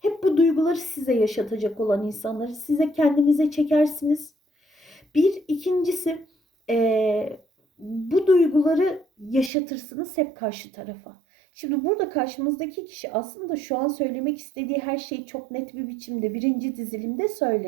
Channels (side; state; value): left; drops out; at 9.5 s